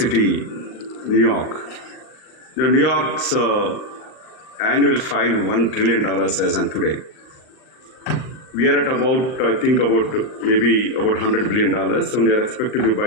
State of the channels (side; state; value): right; late; 39 ms